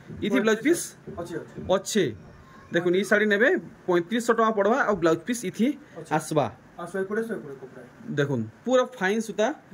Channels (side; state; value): both; identical; correlation 1.00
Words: इथि ब्लाउज पीस अच्छे देखुन ई साड़ी नेबे 3500 टका पड़वा और ब्लाउज पीस इथि आसबा देखुन पूरा फाइन सुता